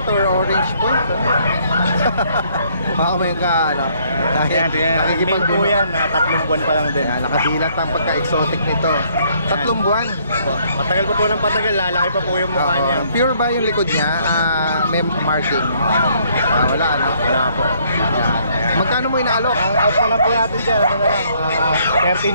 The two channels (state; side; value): inverted; both; correlation -0.66